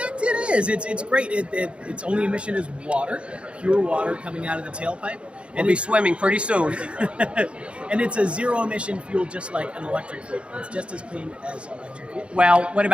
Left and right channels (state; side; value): late; left; 0.058 ms